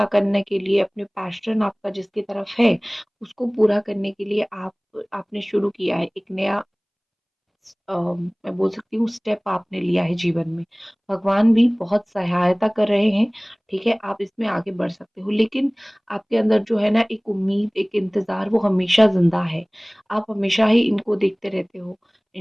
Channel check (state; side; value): identical; both; correlation 1.00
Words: करने के लिए, अपने पैशन आपका जिसकी तरफ है, उसको पूरा करने के लिए आपने शुरू किया है, एक नया मैं बोल सकती हूँ स्टेप आपने लिया है जीवन में। भगवान भी बहुत सहायता कर रहे हैं, ठीक है? आप इसमें आगे बढ़ सकते हो। लेकिन आपके अंदर जो है ना एक उम्मीद, एक इंतज़ार वो हमेशा ज़िंदा है। आप हमेशा ही इनको देखते रहते हो,